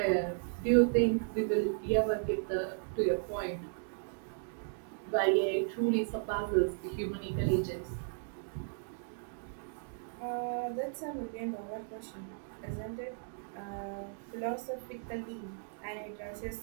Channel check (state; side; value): silent; left; digital silence